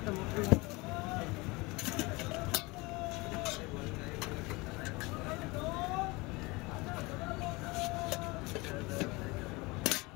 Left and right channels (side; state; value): right; quieter; 24.2 dB